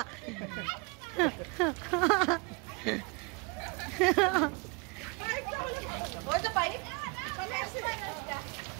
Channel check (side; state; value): left; quieter; 30.8 dB